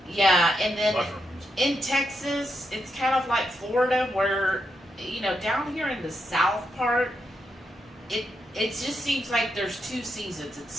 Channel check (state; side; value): normal; both; correlation 0.83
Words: Yeah, and then mushrooms. In Texas, it's kind of like Florida where, down here in the south part, it just seems like there's 2 seasons. It's